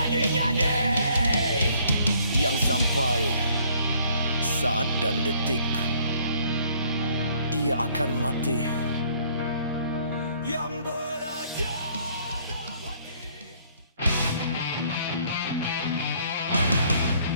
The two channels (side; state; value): both; inverted; correlation -0.62